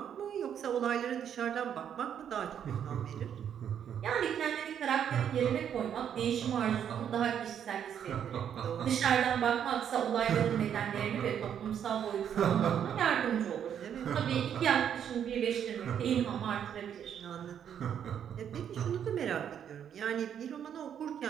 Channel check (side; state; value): left; quieter; 8.9 dB